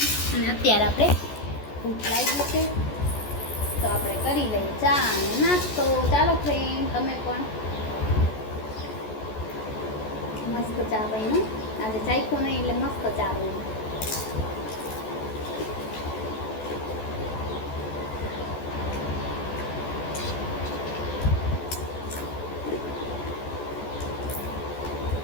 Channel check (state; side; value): late; right; 14 ms